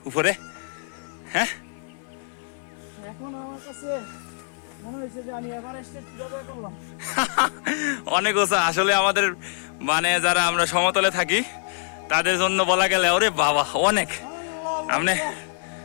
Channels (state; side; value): silent; right; 62 dB below the other